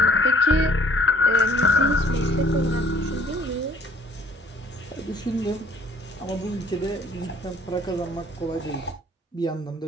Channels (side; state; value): both; normal; correlation 0.57